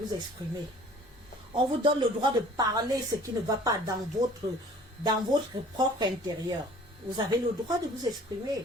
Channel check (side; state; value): both; normal; correlation 0.50